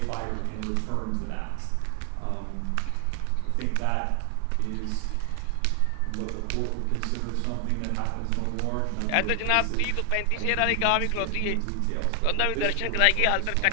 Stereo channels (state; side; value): different; both; correlation 0.00